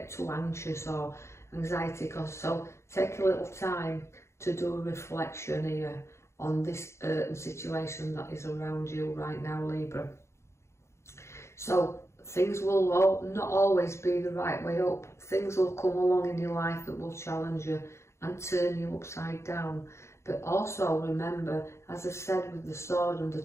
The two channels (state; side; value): late; right; 0.13 ms